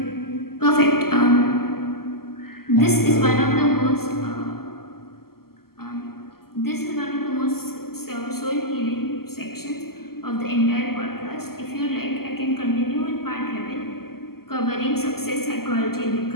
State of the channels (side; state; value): right; late; 0.94 ms